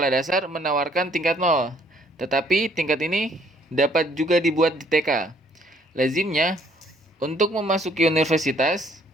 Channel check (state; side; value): normal; both; correlation 0.63